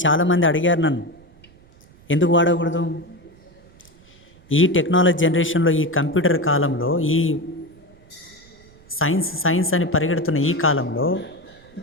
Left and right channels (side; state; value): right; noise; rumble, 27 dB below the sound